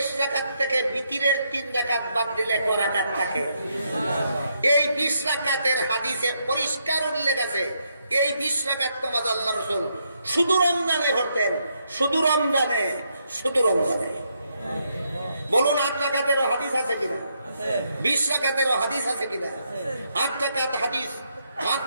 রাকাত থেকে বিতিরের 3 রাকাত বাদ দিলে ক রাকাত থাকে? এই 20 রাকাতের হাদিসে পরিষ্কার উল্লেখ আছে এই 20 রাকাত নামাজ আল্লাহর রাসূল শুধু রমজানে পড়তেন। শুধু রমজানে, শুধু রমজানে। বলুন 8 রাকাতেরও হাদিস আছে কিনা? 20 রাকাতেরও হাদিস আছে কিনা? 8 রাকাত হাদিস, 8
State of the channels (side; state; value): both; inverted; correlation -0.78